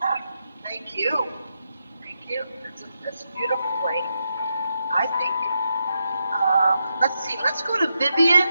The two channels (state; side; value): inverted; both; correlation -0.84